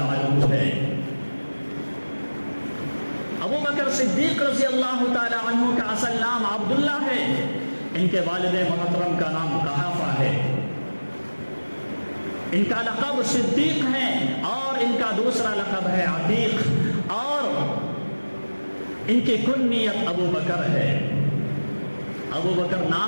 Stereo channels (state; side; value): inverted; both; correlation -1.00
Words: عنہ ہے۔ ابو بکر صدیق رضی اللہ تعالیٰ عنہ کا اصل نام عبداللہ ہے، ان کے والد محترم کا نام قحافہ ہے، ان کا لقب صدیق ہے اور ان کا دوسرا لقب ہے عتیق، اور ان کی کنیت ابو بکر ہے۔ ابو بکر